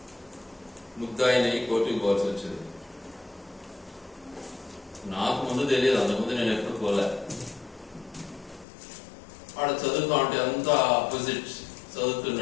ముద్దాయిని కోర్టుకు పోవాల్సి వచ్చింది. నాకు ముందు తెలియదు, అంతకుముందు నేను ఎప్పుడు పోలే. వాడు చదువుతా ఉంటే అంతా ఆపోజిట్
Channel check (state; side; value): drops out; right; at 8.7 s